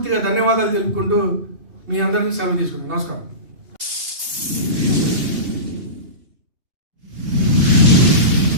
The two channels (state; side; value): late; left; 2.8 ms